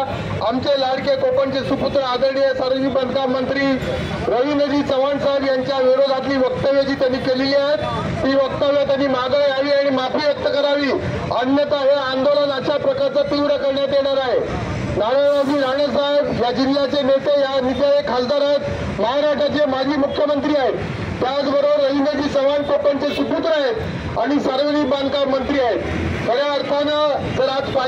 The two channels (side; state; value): both; identical; correlation 1.00